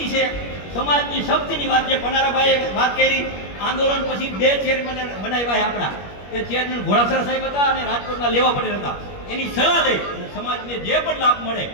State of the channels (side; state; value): right; late; 21 ms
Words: છે. સમાજની શક્તિની વાત જે પનારાભાઈએ વાત કરી, આંદોલન પછી 2 ચેરમેન બનાવ્યા આપણા. એ ચેરમેન ઘોડાસરા સાહેબ હતા અને રાજકોટના લેવા પટેલ હતા. એની સલાહ લઈ અને સમાજને જે પણ લાભ મળે